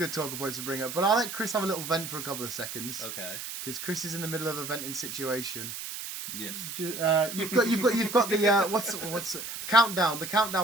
talking points to bring up. But I'll let Chris have a little vent for a couple of seconds. Okay. Because Chris is in the middle of a venting situation. Yes. You've got the what's countdown? The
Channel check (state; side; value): noise; right; hiss, 7 dB below the sound